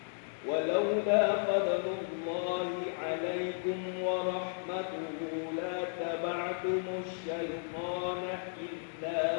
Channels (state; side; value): silent; right; digital silence